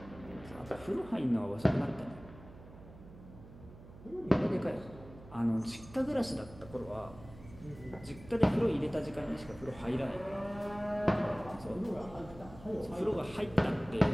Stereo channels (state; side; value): noise; right; hum, 18 dB below the sound